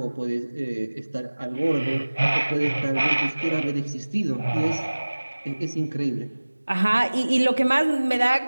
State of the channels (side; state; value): both; inverted; correlation -1.00